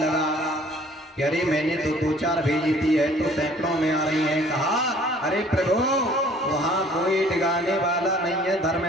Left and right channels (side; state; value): both; normal; correlation 0.55